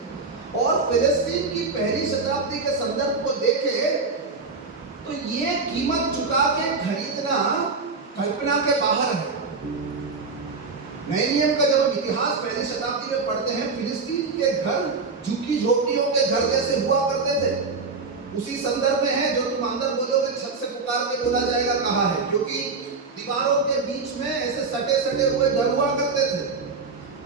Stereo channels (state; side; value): quieter; left; 4.3 dB